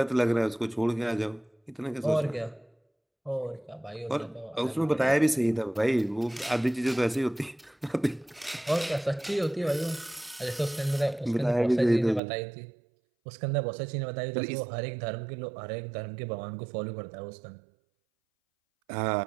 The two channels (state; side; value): drops out; left; at 12.2 s